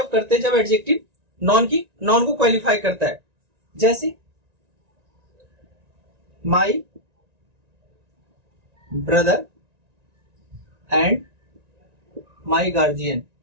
करते हैं, जब एडजेक्टिव नॉन को क्वालिफाई करता है। जैसे my brother and my guardian.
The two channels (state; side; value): late; left; 1.9 ms